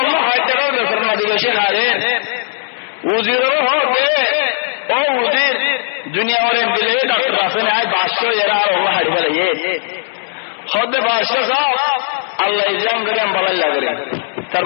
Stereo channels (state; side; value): silent; right; digital silence